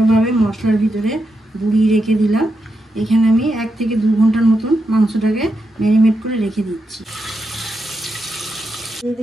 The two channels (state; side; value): normal; both; correlation 0.85